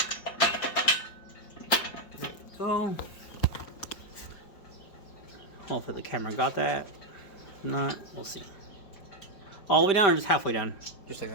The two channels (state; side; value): late; right; 5.1 ms